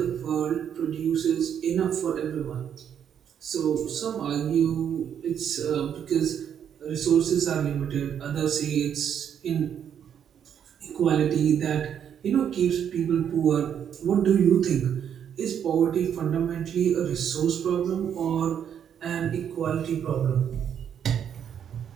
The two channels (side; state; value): left; quieter; 8.7 dB